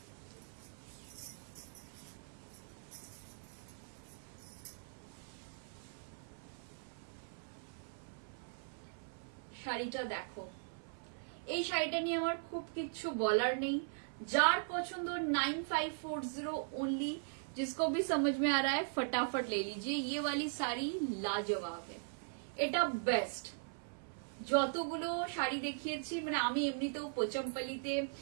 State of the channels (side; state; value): left; silent; 51 dB below the other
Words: শাড়িটা দেখো, এই শাড়িটা নিয়ে আমার খুব কিচ্ছু বলার নেই। जार পছন্দ 9540 ओनली। जिसको भी समझ में आ रहा है फटाफट ले लीजिए। ये वाली साड़ी लाजवाब है, এটা বেস্ট। যতগুলো শাড়ি দেখিয়েছি মানে আমি এমনিতেও পোচামপাল্লিতে